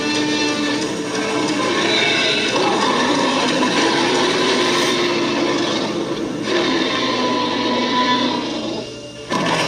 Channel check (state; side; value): identical; both; correlation 1.00